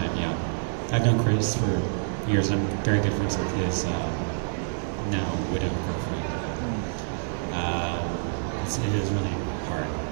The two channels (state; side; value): silent; left; 60 dB below the other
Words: yeah. I've known Chris for years. I'm very good friends with his now widow girlfriend. It is really hard